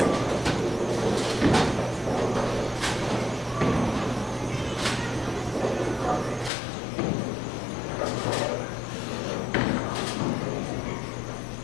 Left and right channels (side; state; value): right; drops out; at 6.5 s